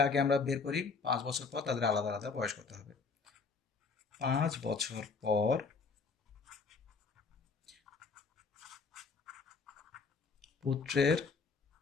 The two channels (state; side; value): quieter; right; 4.8 dB